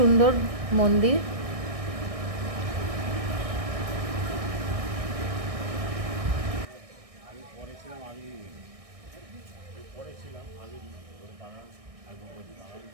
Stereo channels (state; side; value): late; left; 1.6 ms